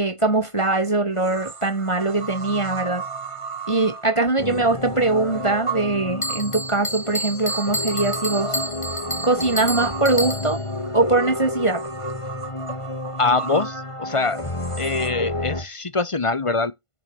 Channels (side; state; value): right; late; 1.5 ms